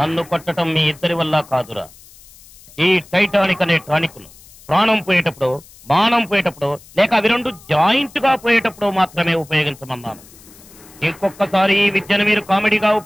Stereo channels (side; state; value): left; noise; hiss, 23 dB below the sound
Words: కొట్టడం మీ ఇద్దరి వల్ల కాదురా. ఈ టైటానిక్ అనే టానిక్ ను ప్రాణం పోయేటప్పుడు, మానం పోయేటప్పుడు, లేక అవి రెండు జాయింట్ గా పోయేటప్పుడు మాత్రమే ఉపయోగించమన్నాను. ఇంకొకసారి ఈ విద్యను మీరు కామెడీగా